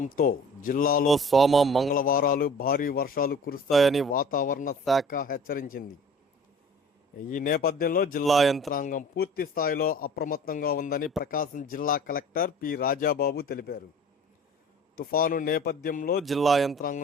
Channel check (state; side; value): normal; both; correlation 0.45